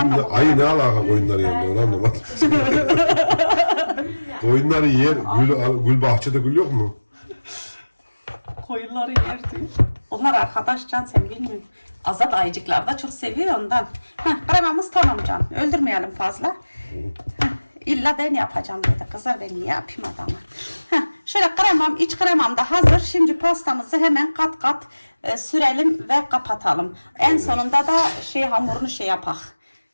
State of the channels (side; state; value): both; inverted; correlation -1.00